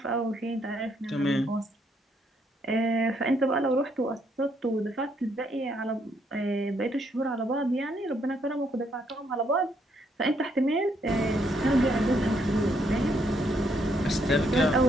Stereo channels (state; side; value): normal; both; correlation 0.72